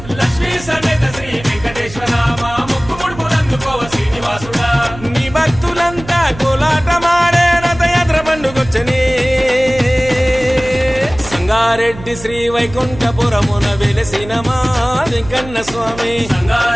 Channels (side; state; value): right; noise; hum, 15 dB below the sound